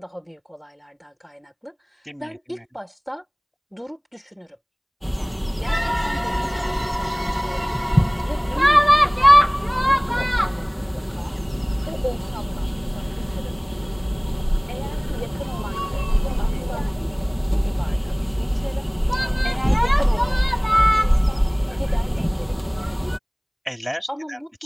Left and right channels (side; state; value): both; identical; correlation 1.00